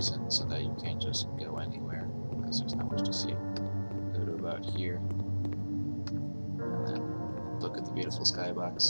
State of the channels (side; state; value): both; inverted; correlation -1.00